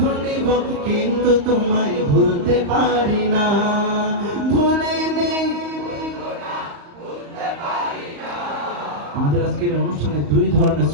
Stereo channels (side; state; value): left; late; 35 ms